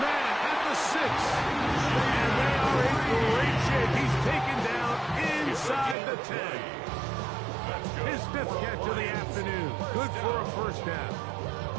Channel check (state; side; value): drops out; left; at 6.0 s